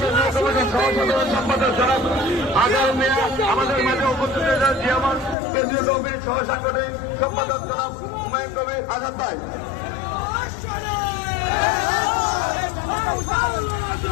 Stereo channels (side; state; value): right; drops out; at 5.4 s